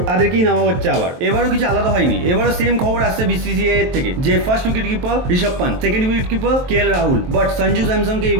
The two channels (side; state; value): left; late; 23 ms